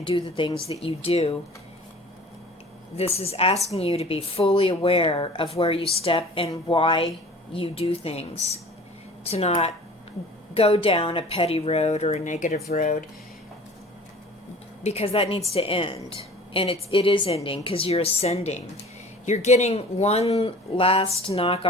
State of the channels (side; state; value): both; normal; correlation 0.44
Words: do the things that you do, this is asking you to be fully aware of where you step and why you do things. To not go down a petty road or a negative road, because that needs to end. And it is ending because you're ascending. You're getting one last knock